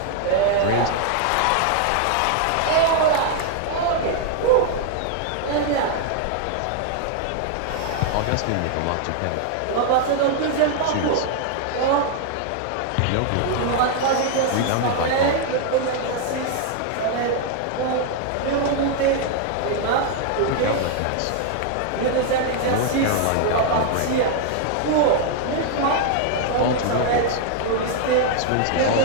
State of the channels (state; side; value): different; both; correlation 0.00